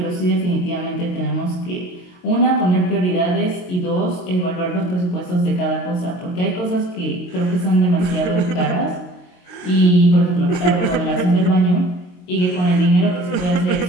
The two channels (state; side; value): late; right; 22 ms